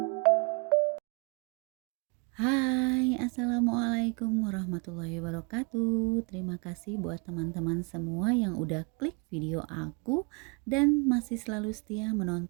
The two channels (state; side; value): quieter; left; 33.2 dB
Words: assalamualaikum warahmatullahi wabarakatuh. Terima kasih buat teman-teman semua yang udah klik video aku dan masih selalu setia